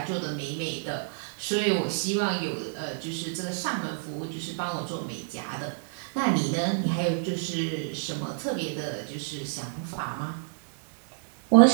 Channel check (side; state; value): left; silent; digital silence